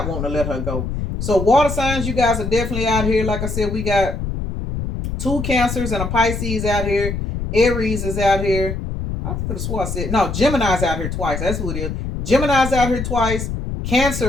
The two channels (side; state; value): left; noise; rumble, 4 dB below the sound